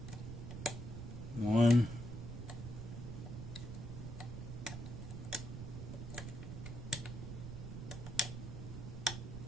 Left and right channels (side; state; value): right; noise; rumble, 7 dB below the sound